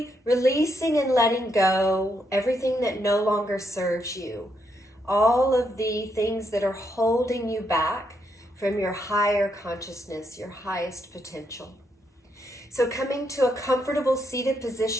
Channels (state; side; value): normal; both; correlation 0.78